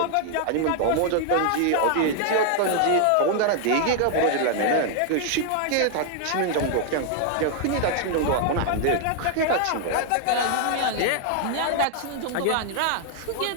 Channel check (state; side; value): different; both; correlation 0.00